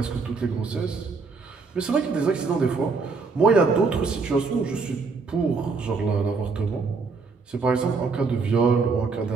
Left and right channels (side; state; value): left; quieter; 4.6 dB